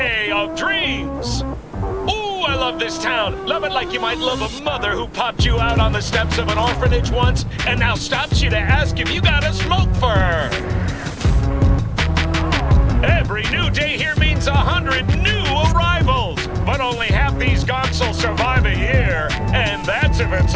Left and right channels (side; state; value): both; identical; correlation 1.00